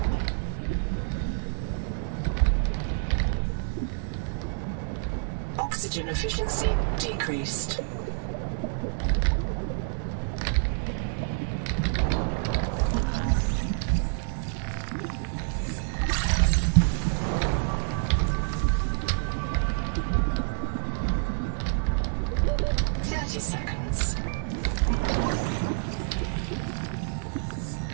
Oxygen efficiency decreased.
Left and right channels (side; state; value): left; silent; digital silence